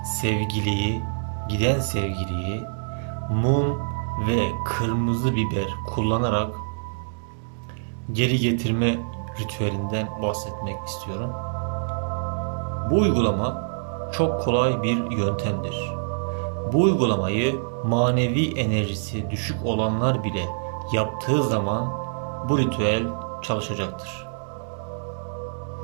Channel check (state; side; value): silent; left; digital silence